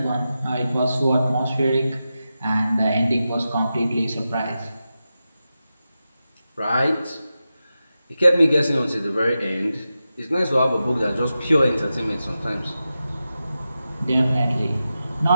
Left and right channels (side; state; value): both; inverted; correlation -0.91